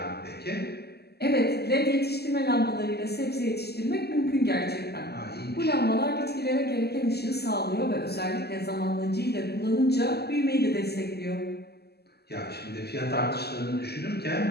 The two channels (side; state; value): right; late; 0.47 ms